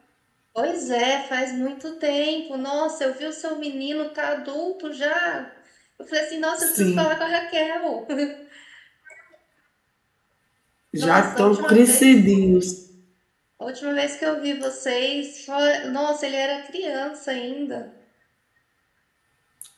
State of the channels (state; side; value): identical; both; correlation 1.00